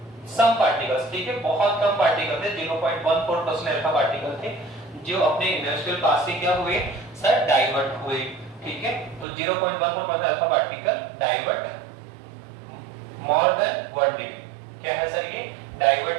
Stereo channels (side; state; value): left; drops out; at 9.2 s